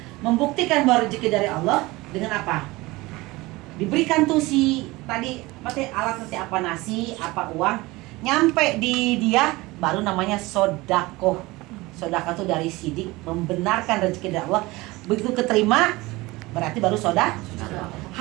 Membuktikan bahwa rezeki dari Allah dengan apa? Diberikan tuh si tadi alat nanti apa, nasi, apa uang, nyampe di dia baru namanya sodakoh. Sodakoh itu dari sidik, membenarkan rezeki dari Allah. Begitu keterima berarti baru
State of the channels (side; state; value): left; quieter; 21.3 dB